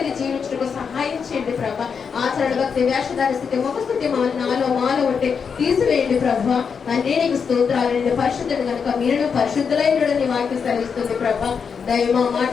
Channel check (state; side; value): quieter; right; 6.2 dB